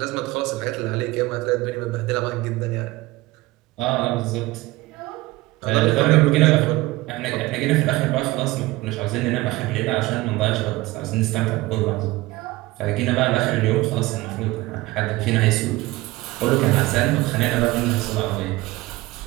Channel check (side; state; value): left; quieter; 19.6 dB